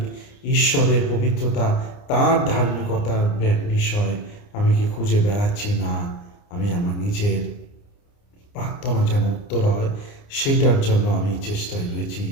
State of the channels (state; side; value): late; right; 29 ms